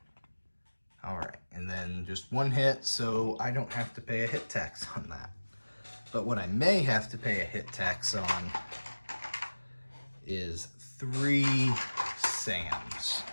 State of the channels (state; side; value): inverted; both; correlation -1.00